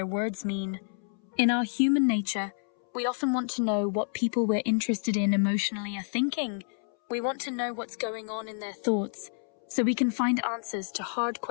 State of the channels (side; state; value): right; silent; 59 dB below the other